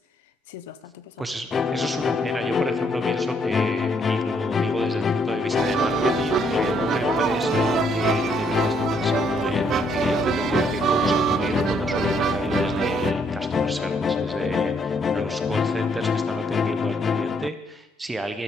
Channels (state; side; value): normal; both; correlation 0.71